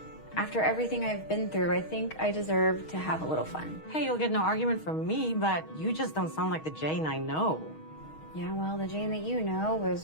after everything I've been through, I think I deserve to have a little fun. Hey, you'll get no argument from me, but you just don't sound like the Jane I know. Yeah, well, the Jane that you know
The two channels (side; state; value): right; late; 6.3 ms